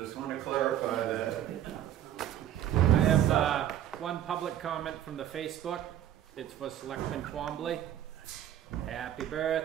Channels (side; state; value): left; quieter; 11.1 dB